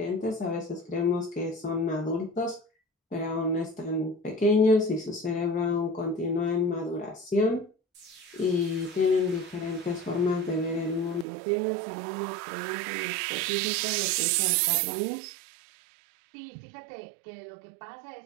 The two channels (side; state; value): left; drops out; at 11.2 s